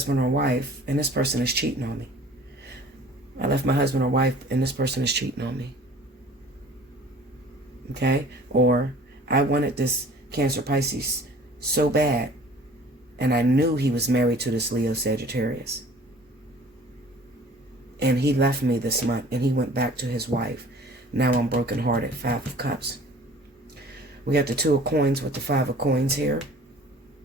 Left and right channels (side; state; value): both; normal; correlation 0.48